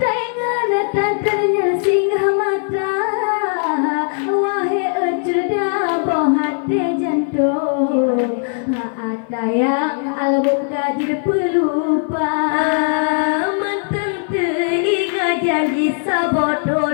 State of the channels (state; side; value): silent; right; 57 dB below the other